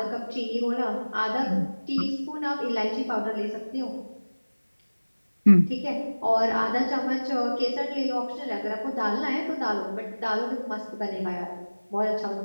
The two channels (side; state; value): both; inverted; correlation -1.00